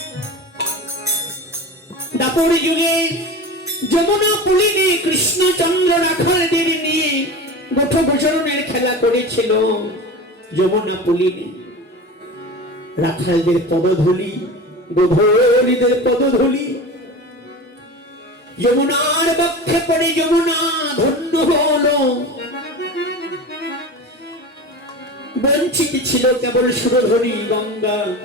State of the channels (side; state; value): both; normal; correlation 0.31